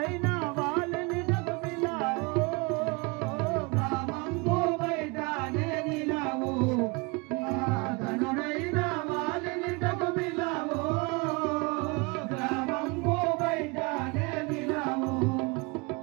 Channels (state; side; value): quieter; left; 28.2 dB